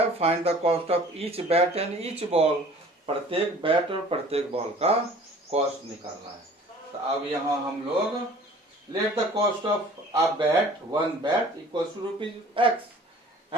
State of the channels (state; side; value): normal; both; correlation 0.48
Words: find the cost of each bat and each ball, प्रत्येक बैट और प्रत्येक बॉल का कॉस्ट निकालना है। तो अब यहाँ हम लोग let the cost of a bat, 1 bat equals to ₹X